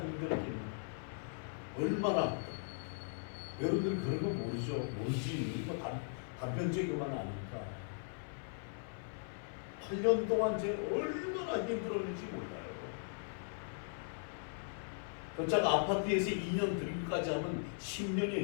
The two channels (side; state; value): right; silent; 52 dB below the other